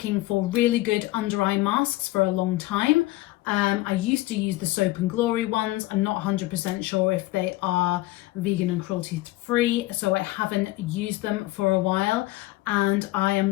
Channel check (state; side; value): quieter; right; 18.5 dB